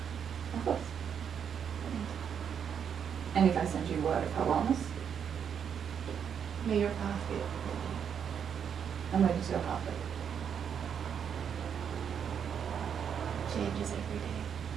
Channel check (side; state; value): left; quieter; 7.8 dB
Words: Of course. And if I send you word of her wellness, May your path be open. I'm ready to go pathway. Changes every day.